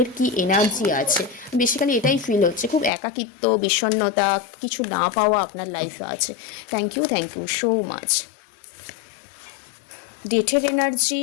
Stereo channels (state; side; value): drops out; right; at 2.9 s